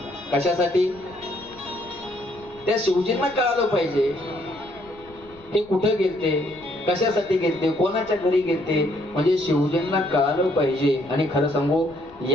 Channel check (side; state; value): left; noise; rumble, 25 dB below the sound